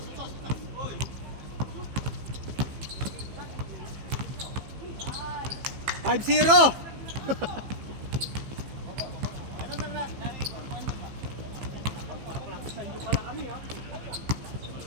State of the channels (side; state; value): left; late; 15 ms